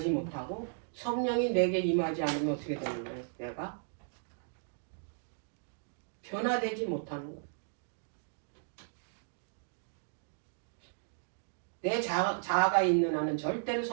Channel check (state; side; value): silent; left; digital silence